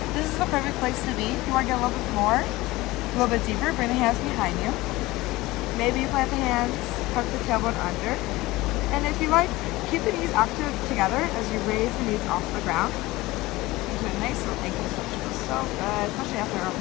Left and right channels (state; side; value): quieter; right; 19.5 dB